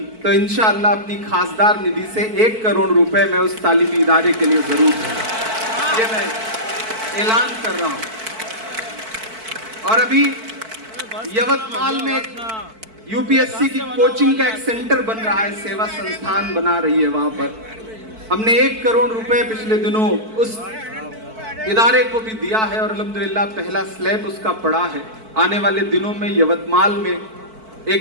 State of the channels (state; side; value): late; left; 4.5 ms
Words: तो इंशाअल्लाह अपनी खासदार निधि से 1 करोड़ रुपए मैं उस तालीमी इदारे के लिए जरूर दूंगा। ये मैं ऐलान कर रहा हूँ। और अभी यवतमाल में यूपीएससी की कोचिंग का एक सेंटर बन रहा है, सेवा संस्थान बना रही है। वहां पर हमने 1 करोड़ रुपए पिछले दिनों उस इदारे को भी दिया है और अल्हम्दुलिल्लाह पहला स्लैब उसका पड़ा है। आने वाले दिनों में यवतमाल में एक